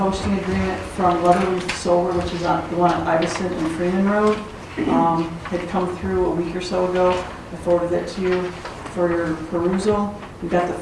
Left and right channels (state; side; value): identical; both; correlation 1.00